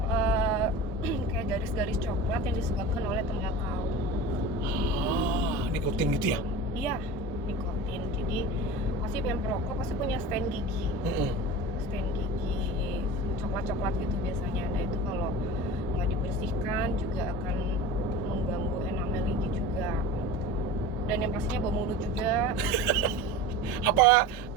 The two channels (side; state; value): both; normal; correlation 0.33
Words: kayak garis-garis coklat yang disebabkan oleh tembakau. Nikotin gitu ya? Iya, nikotin. Jadi pasti yang perokok pasti punya stain gigi. Stain gigi coklat-coklat gitu biasanya. Nah itu kalau nggak dibersihkan juga akan mengganggu enamel gigi juga. Dan yang pastinya bau mulut juga. Apa